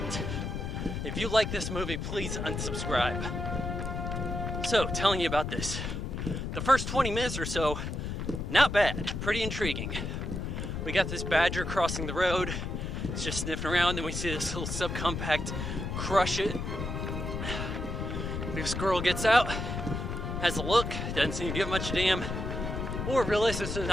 If you like this movie, please unsubscribe. So, telling you about this. The first 20 minutes or so, not bad, pretty intriguing. We got this badger crossing the road. It's just sniffing around, then we see this little subcompact crush it. This girl gets out, has a look, doesn't seem to give much a damn, or realizes there's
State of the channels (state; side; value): noise; left; rumble, 4 dB below the sound